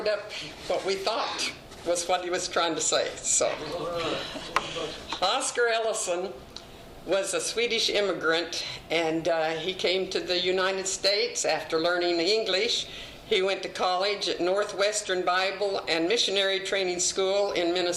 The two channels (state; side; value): identical; both; correlation 1.00